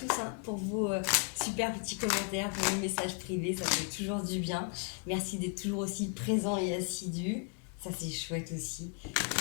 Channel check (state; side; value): quieter; right; 34.8 dB